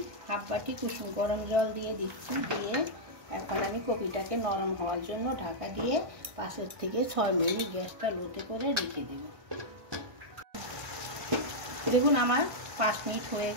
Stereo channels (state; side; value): late; left; 1.2 ms